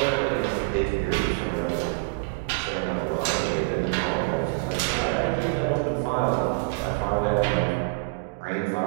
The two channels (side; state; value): left; quieter; 30.0 dB